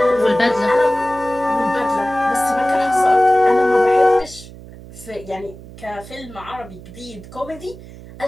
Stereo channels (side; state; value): right; noise; hum, 17 dB below the sound